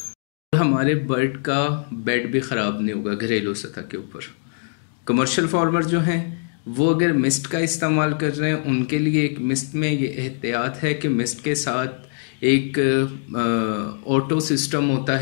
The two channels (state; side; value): silent; right; 64 dB below the other